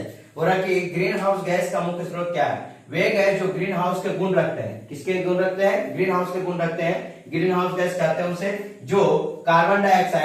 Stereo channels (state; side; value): identical; both; correlation 1.00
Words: बोला कि ग्रीन हाउस गैस का मुख्य स्रोत क्या है, वे गैस जो ग्रीन हाउस के गुण रखते हैं। किसके गुण रखते हैं? ग्रीन हाउस के गुण रखते हैं। ग्रीन हाउस गैस कहते हैं उसे जो कार्बन